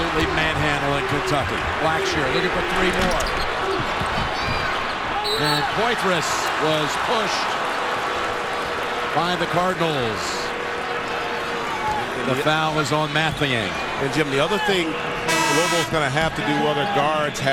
manhandling Kentucky. Blackshear looking for 3 more. And Poitras was pushed by the Cardinals. The foul is on Mathiang. And Jim, the other thing Louisville's going to have to do, other guards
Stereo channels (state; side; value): identical; both; correlation 1.00